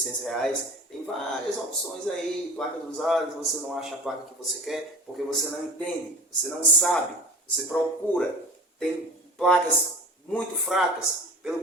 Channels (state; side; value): normal; both; correlation 0.36